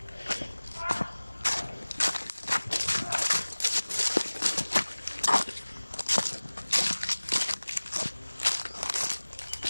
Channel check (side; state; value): both; inverted; correlation -1.00